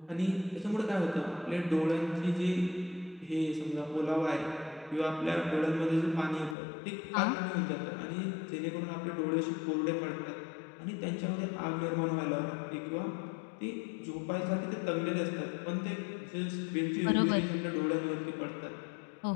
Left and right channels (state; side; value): drops out; right; at 6.6 s